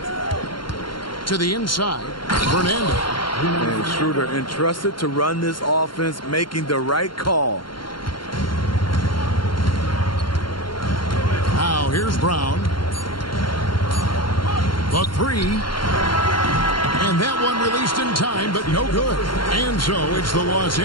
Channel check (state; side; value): late; right; 0.72 ms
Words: To the inside. Fernando. And Schroeder entrusted to run this offense, making the right call. Now here's Brown. The 3. And that one released in time, but no good. And so it's the Los